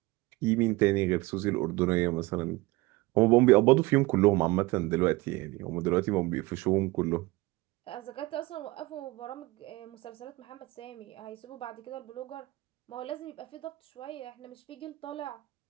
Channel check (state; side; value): quieter; left; 21.5 dB